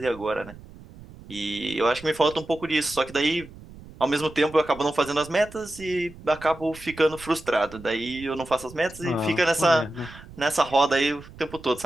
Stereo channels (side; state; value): right; noise; rumble, 18 dB below the sound